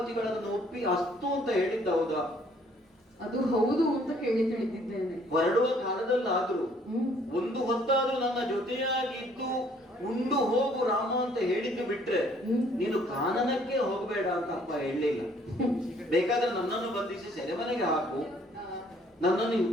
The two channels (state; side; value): normal; both; correlation 0.61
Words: ಒಪ್ಪಿ ಅಸ್ತು ಅಂತ ಹೇಳಿದ್ದ ಹೌದಾ? ಅದು ಹೌದು ಅಂತ ಕೇಳಿ ತಿಳಿದಿದ್ದೇನೆ. ಹೊರಡುವ ಕಾಲದಲ್ಲಾದ್ರೂ ಒಂದು ಹೊತ್ತಾದ್ರೂ ನನ್ನ ಜೊತೆಯಾಗಿದ್ದು ಉಂಡು ಹೋಗು ರಾಮ ಅಂತ ಹೇಳಿದ್ದು ಬಿಟ್ರೆ ನೀನು ಕಾನನಕ್ಕೆ ಹೋಗಬೇಡ ಅಂತ ಅಪ್ಪ ಹೇಳಲಿಲ್ಲ. ಬೇಕಾದ್ರೆ ನನ್ನನ್ನು ಬಂಧಿಸಿ ಸೆರೆಮನೆಗೆ ಹಾಕು, ನನ್ನನ್ನು